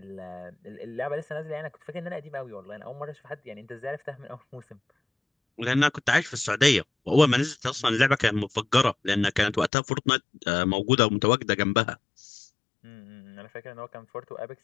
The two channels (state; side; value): drops out; right; at 9.7 s